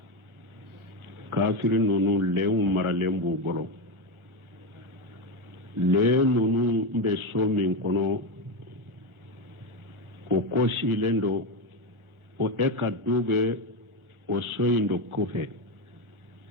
kafiri ninnu lɛnw maralen b'u bolo lɛn ninnu bɛ so min kɔnɔ o kɔsilen do o ka du bɛ o so in do kɔfɛ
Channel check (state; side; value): late; left; 1.4 ms